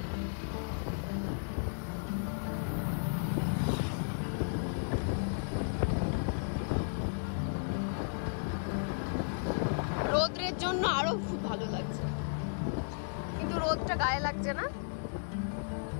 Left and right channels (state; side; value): silent; right; digital silence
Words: রোদ্রের জন্য আরো খুব ভালো লাগছে, কিন্তু রোদটা গায়ে লাগছে না।